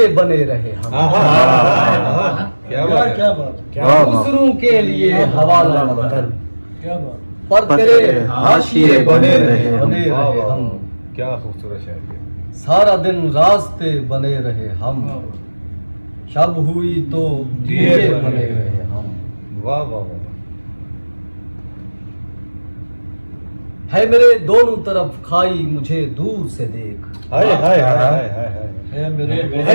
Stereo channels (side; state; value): both; inverted; correlation -1.00